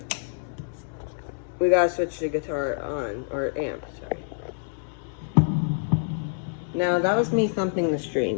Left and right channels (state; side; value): silent; right; digital silence